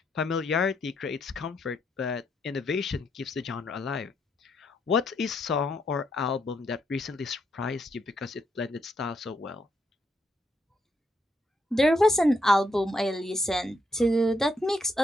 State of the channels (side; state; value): both; normal; correlation 0.76